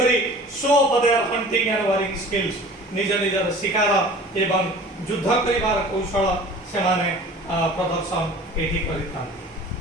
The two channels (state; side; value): normal; both; correlation 0.44